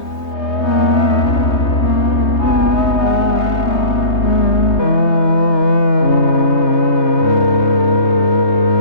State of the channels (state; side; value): late; right; 3.2 ms